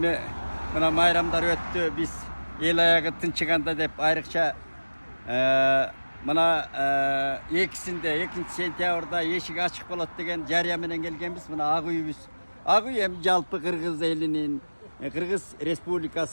мына майрамдар өттү. Биз эл аягы тынчыганда деп айрыкча мына 2 сентябрда эшик ачык болот деген жарыя менен келгенбиз. Мына ак үйүбүз. Ак үй эми жалпы Кыргыз элинин, Кыргыз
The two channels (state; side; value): inverted; both; correlation -1.00